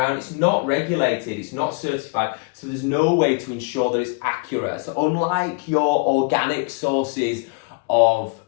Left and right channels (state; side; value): quieter; right; 31.2 dB